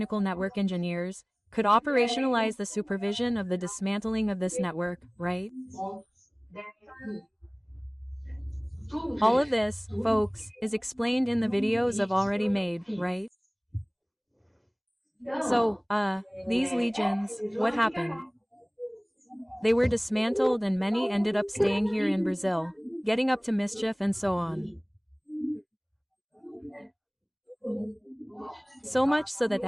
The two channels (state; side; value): identical; both; correlation 1.00